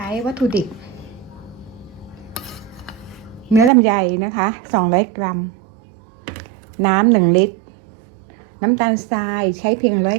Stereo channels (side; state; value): left; drops out; at 3.7 s